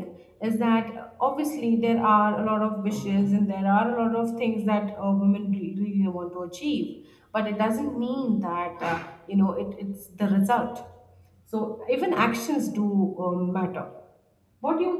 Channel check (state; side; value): identical; both; correlation 1.00